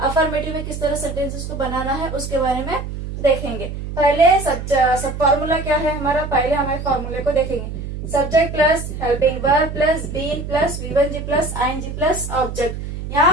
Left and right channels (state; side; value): noise; right; hum, 7 dB below the sound